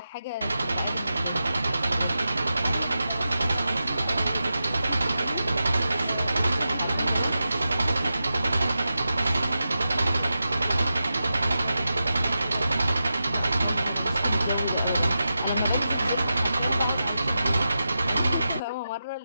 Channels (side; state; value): both; inverted; correlation -0.90